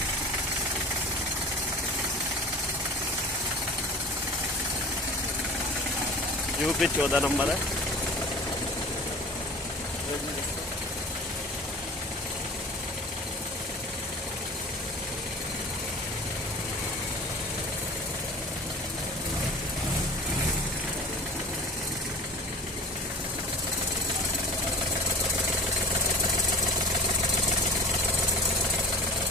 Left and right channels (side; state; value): both; normal; correlation 0.39